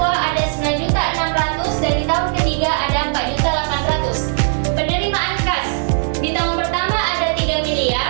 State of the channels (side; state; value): left; silent; 65 dB below the other